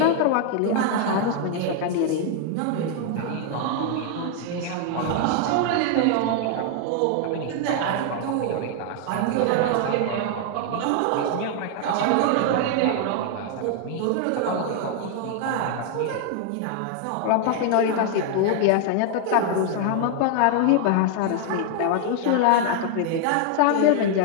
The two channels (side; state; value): both; different; correlation 0.00